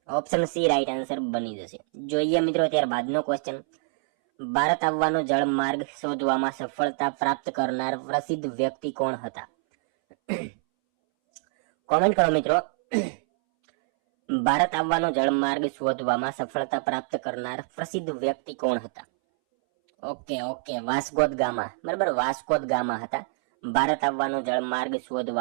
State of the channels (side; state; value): left; silent; 61 dB below the other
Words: ઓપ્શન સી રાઈટ આન્સર બની જશે. જોઈએ મિત્રો ત્યારબાદનો ક્વેશ્ચન. ભારત આવવાનો જળમાર્ગ શોધવામાં સફળતા પ્રાપ્ત કરનાર પ્રસિદ્ધ વ્યક્તિ કોણ હતા? કોમેન્ટ કરો મિત્રો. ભારત આવવાનો જળમાર્ગ શોધવામાં સફળતા પ્રાપ્ત કરનાર પ્રસિદ્ધ વ્યક્તિ કોણ હતા? ઓકે, વાસ્કો દ ગામા, બરાબર, વાસ્કો દ ગામા હતા. ભારત આવવાનો જળમાર્ગ